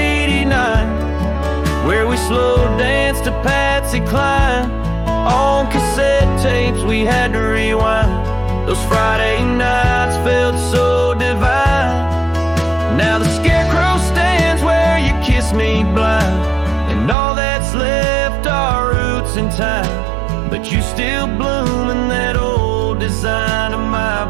where we slow danced to Patsy Cline. On cassette tapes we had to rewind. Those Friday nights felt so divine. Now the scarecrow stands where you kissed me blind, and all that's left are roots in time. But you still bloom in that old design of my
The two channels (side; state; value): left; drops out; at 17.2 s